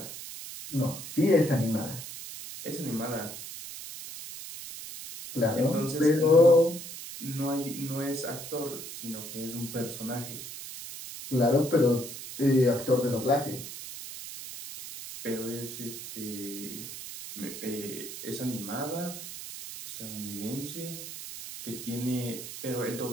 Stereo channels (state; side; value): noise; right; hiss, 10 dB below the sound